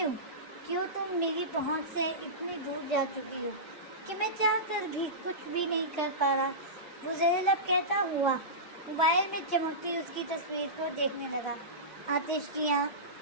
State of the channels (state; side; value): normal; both; correlation -0.18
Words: کیوں تم میری پہنچ سے اتنی دور جا چکی ہو کہ میں چاہ کر بھی کچھ بھی نہیں کر پا رہا؟ وہ زیر لب کہتا ہوا موبائل میں چمکتی اس کی تصویر کو دیکھنے لگا۔ آتش